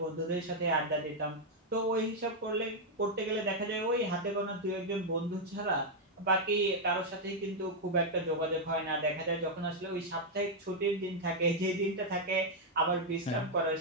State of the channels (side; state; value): both; normal; correlation -0.02